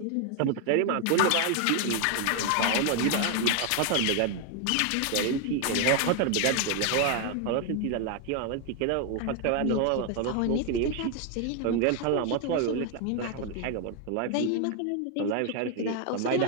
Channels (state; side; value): different; both; correlation 0.01